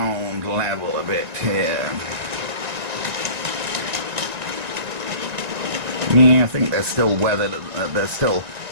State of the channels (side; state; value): left; late; 1.8 ms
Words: level a bit here. Yeah, I think they're still weathered. They're still